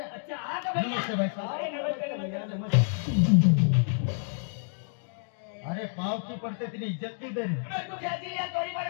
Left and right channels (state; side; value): silent; right; digital silence